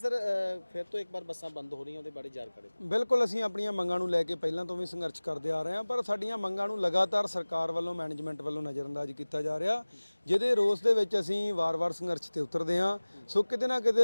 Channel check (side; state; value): both; inverted; correlation -1.00